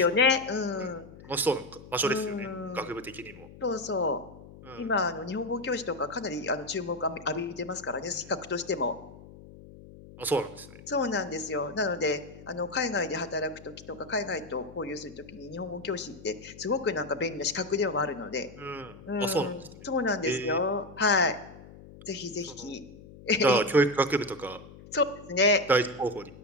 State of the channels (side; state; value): left; noise; hum, 18 dB below the sound